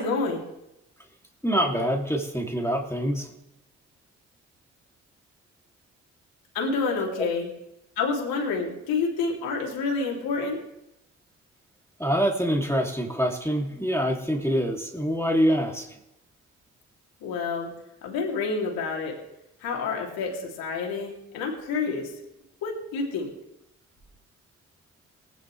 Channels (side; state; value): both; normal; correlation 0.44